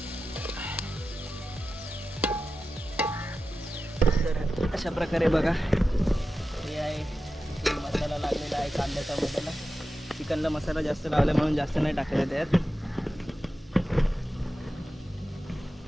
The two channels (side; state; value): both; normal; correlation 0.93